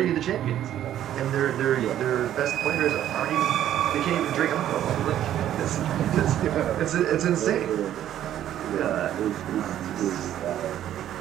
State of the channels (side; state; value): left; quieter; 11.6 dB